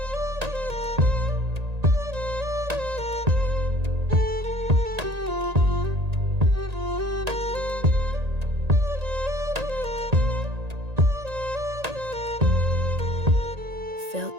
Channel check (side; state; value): left; late; 1.8 ms